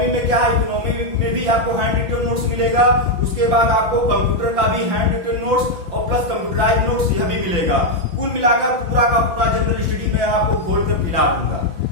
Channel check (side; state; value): left; late; 5.9 ms